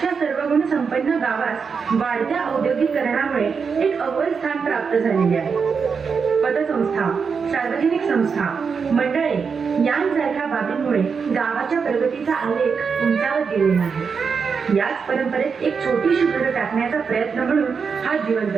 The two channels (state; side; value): quieter; left; 5.7 dB